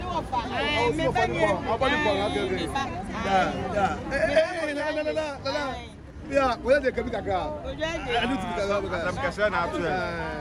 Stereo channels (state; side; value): identical; both; correlation 1.00